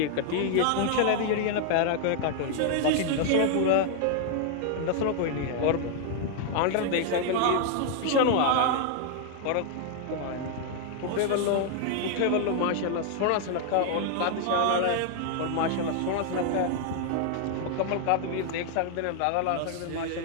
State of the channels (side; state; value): both; different; correlation 0.00